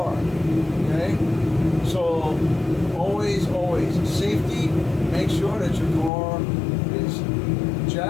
Okay? So always, safety, make sure that your car is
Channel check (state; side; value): drops out; right; at 6.1 s